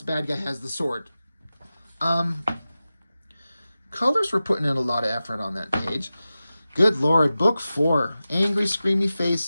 Bad guy has the sword. Colors were putting in a lot of effort on that page. Good Lord. Book 4. Angry Screamy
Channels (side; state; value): both; inverted; correlation -0.94